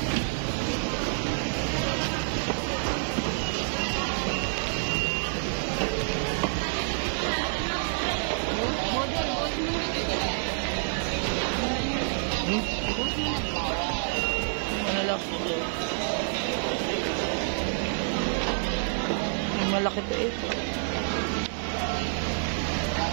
Malaki to eh.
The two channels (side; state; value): left; silent; digital silence